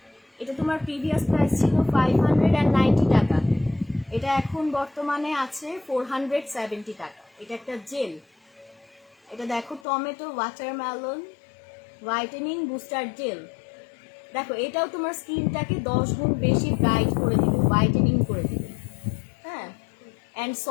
এটা তোমার প্রিভিয়াস প্রাইস ছিল 590 টাকা, এটা এখন বর্তমানে আছে 470 টাকা। এটা একটা জেল, এটা দেখো tomato watermelon whitening booster gel. দেখো এটাও তোমার স্কিনটাকে 10 গুণ বেশি ব্রাইট করে দিবে, হোয়াইটেনিং করে দিবে, হ্যাঁ, অ্যান্ড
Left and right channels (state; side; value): drops out; right; at 9.9 s